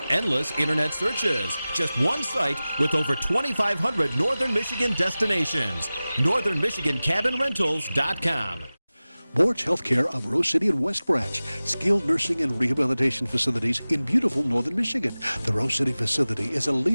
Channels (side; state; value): both; inverted; correlation -0.97